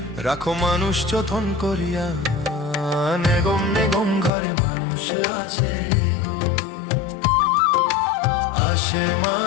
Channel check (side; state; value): right; drops out; at 4.3 s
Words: রাখো মানুষ যতন করিয়া, বেগম বেগম ঘরে মানুষ আছে গো। আসে